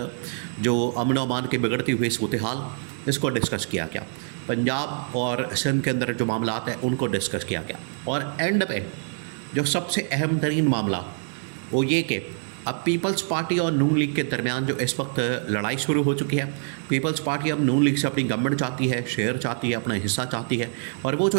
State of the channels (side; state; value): left; silent; 62 dB below the other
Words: جو امن و امان کی بگڑتی ہوئی صورتحال، اس کو ڈسکس کیا گیا۔ پنجاب اور سندھ کے اندر جو معاملات ہیں ان کو ڈسکس کیا گیا، اور اینڈ پہ جو سب سے اہم ترین معاملہ وہ یہ کہ اب پیپلز پارٹی اور نون لیگ کے درمیان جو اس وقت لڑائی شروع ہو چکی ہے، پیپلز پارٹی اب نون لیگ سے اپنی گورنمنٹ چاہتی ہے، شیئر چاہتی ہے، اپنا حصہ چاہتی ہے، اور وہ جو